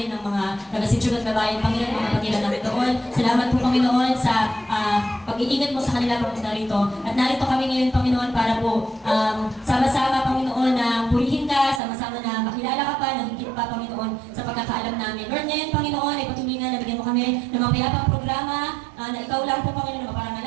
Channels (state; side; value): drops out; left; at 11.8 s